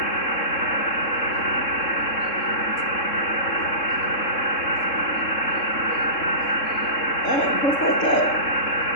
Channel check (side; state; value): right; late; 3.7 ms